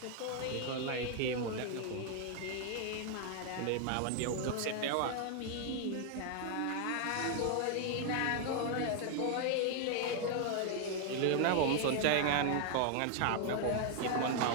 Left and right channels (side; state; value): both; different; correlation 0.00